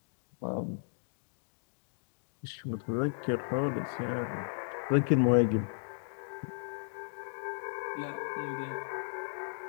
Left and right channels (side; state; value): right; silent; digital silence